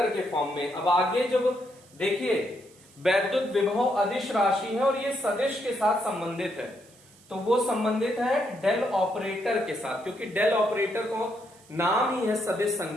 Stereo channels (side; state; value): right; noise; hiss, 27 dB below the sound